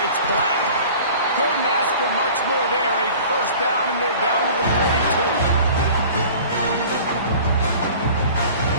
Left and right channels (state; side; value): inverted; both; correlation -0.44